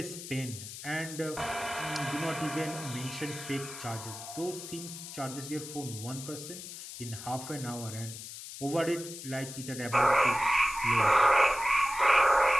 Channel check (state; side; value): noise; left; hiss, 11 dB below the sound